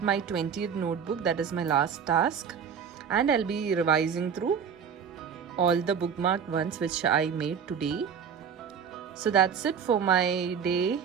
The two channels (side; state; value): left; quieter; 7.2 dB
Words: my 20th notebook. That is my last task, and I'll be revising through all the bookmarked ones which I made today. So that's it for my day,